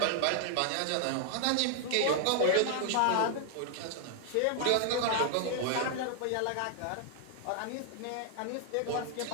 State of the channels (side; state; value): both; different; correlation 0.00